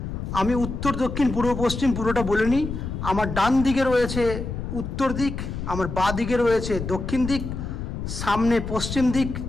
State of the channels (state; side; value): noise; left; rumble, 6 dB below the sound